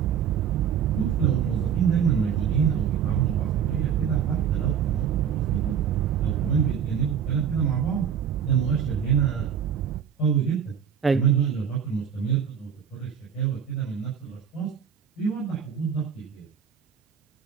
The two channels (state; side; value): quieter; left; 8.1 dB